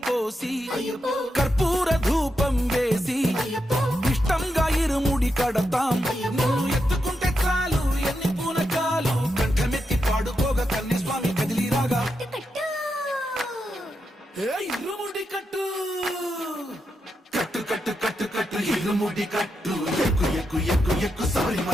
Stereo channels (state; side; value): normal; both; correlation 0.85